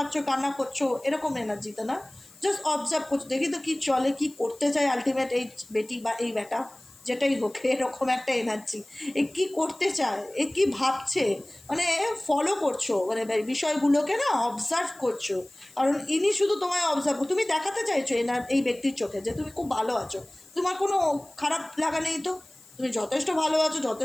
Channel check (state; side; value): noise; left; hiss, 25 dB below the sound